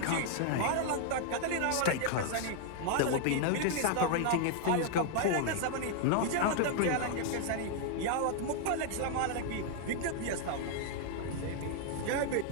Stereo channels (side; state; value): both; different; correlation 0.00